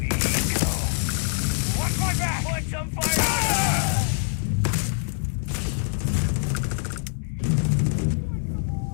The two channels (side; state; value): right; silent; digital silence